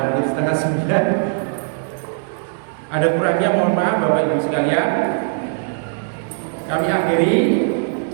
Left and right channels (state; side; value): silent; left; 66 dB below the other